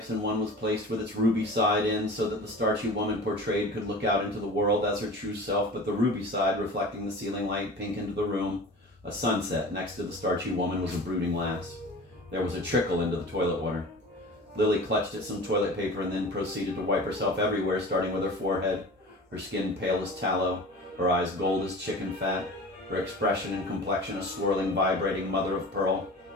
and one was placed with its ruby side in so that the starchy woman portrayed could look out into the world as her true self, but the ruby side reflecting the ceiling light pink into the room. A sunset next to the starchy woman was a brooding lass. There was a trickle into the toilet water. Lily clutched at some toilet paper and then proceeded to wipe herself everywhere, starting with her forehead, her skin pale as tallow, her eyes gold as chicken fat, her expression and complexion a swirling, vibrating mother of pearl.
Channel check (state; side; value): normal; both; correlation 0.38